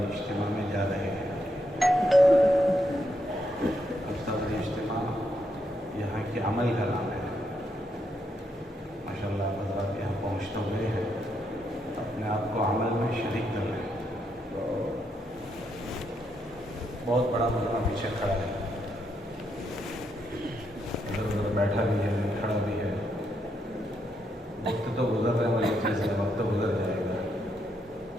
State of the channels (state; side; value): normal; both; correlation 0.79